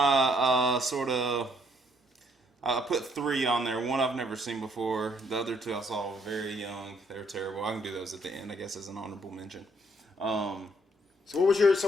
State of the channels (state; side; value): normal; both; correlation 0.68